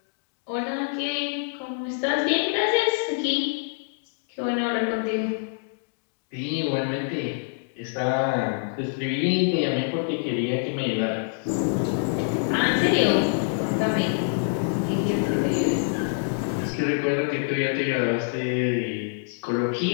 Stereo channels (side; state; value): right; silent; digital silence